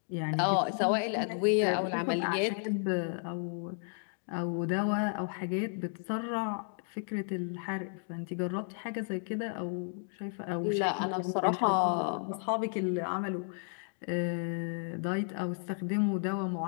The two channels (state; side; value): silent; right; 56 dB below the other